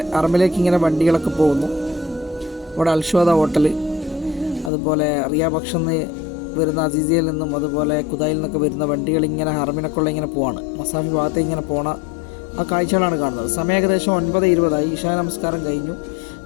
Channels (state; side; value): drops out; right; at 4.7 s